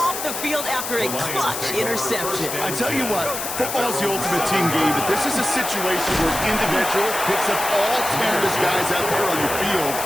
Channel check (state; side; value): noise; left; hiss, 5 dB below the sound